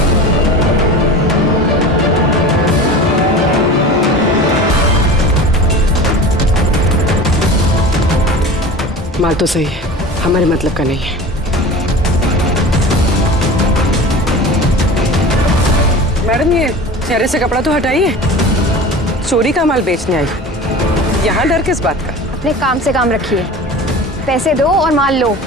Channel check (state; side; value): normal; both; correlation 0.36